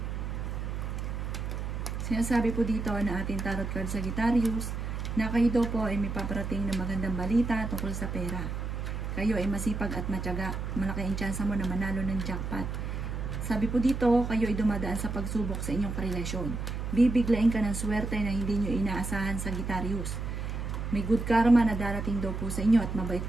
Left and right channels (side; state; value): right; noise; hum, 4 dB below the sound